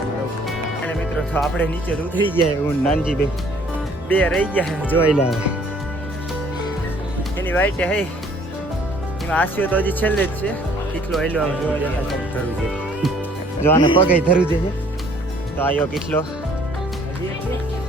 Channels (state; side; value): normal; both; correlation 0.59